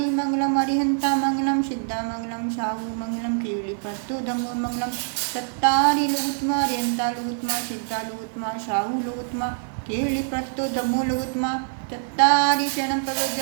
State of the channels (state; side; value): silent; left; digital silence